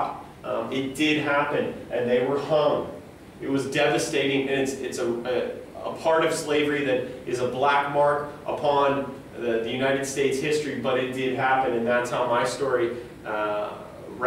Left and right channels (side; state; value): both; identical; correlation 1.00